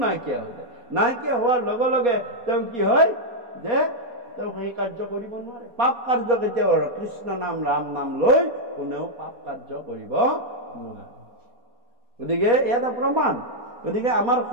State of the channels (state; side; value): late; left; 4.2 ms